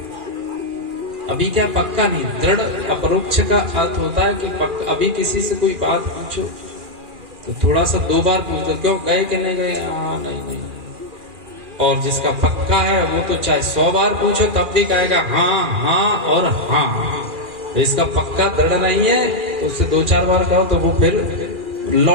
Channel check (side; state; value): left; late; 2.4 ms